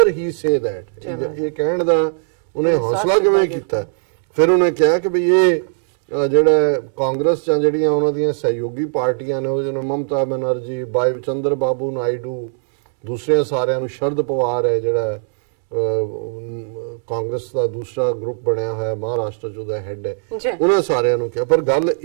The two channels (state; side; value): silent; left; digital silence